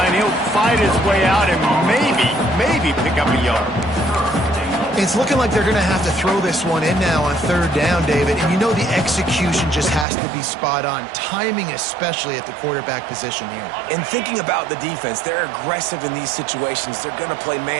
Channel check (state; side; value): drops out; left; at 10.1 s